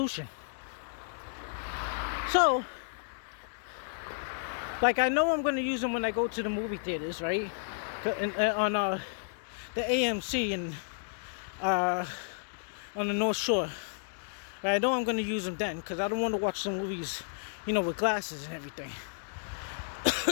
So, like I know I'm gonna use them when I go to the movie theaters, right? On the AMC and on the North Shore. I know I'm gonna use them then because I don't want to watch some movies, with glasses and everything.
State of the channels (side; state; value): right; silent; digital silence